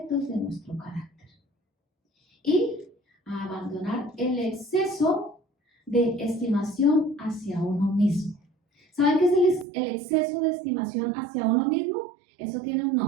de nuestro carácter y a abandonar el exceso de estimación hacia uno mismo. ¿Saben qué es el exceso de estimación hacia uno mismo? Eso tiene un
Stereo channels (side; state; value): left; drops out; at 9.7 s